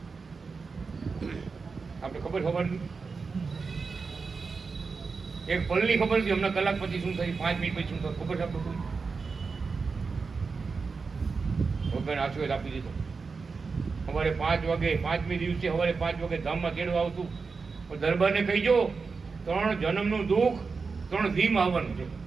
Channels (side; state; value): left; quieter; 4.7 dB